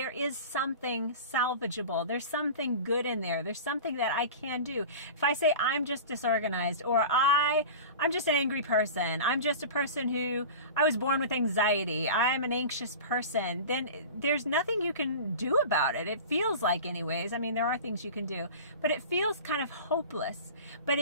is something salvageable. There's something good in there. There's something that I can do. If I say I'm just disorganized, or I'm just an angry person, I'm just a person who I was born with anxiety, I'm an anxious person, then there's nothing you can do about it. It feels like, anyways. I mean, there are things you can do, but it feels kind of hopeless. But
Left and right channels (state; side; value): inverted; both; correlation -0.34